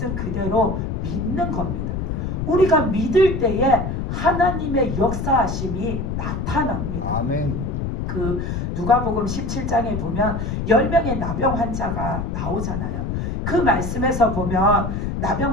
그대로 믿는 겁니다. 우리가 믿을 때에 하나님의 역사하심이 나타납니다. 아멘. 그 누가복음 17장에 보면 10명의 나병 환자가 나오잖아요. 그 말씀에서 보면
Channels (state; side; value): noise; left; rumble, 3 dB below the sound